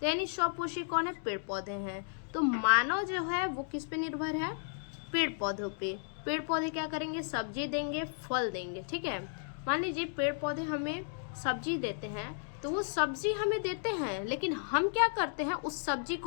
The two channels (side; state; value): right; silent; digital silence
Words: यानी स्वपोषी कौन है, पेड़ पौधे हैं। तो मानव जो है वो किस पे निर्भर है, पेड़ पौधों पे। पेड़ पौधे क्या करेंगे, सब्जी देंगे, फल देंगे, ठीक है। मान लीजिए पेड़ पौधे हमें सब्जी देते हैं, तो वो सब्जी हमें देते हैं, लेकिन हम क्या करते हैं, उस सब्जी